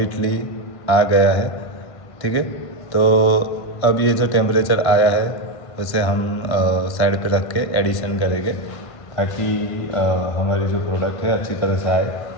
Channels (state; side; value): late; right; 1.5 ms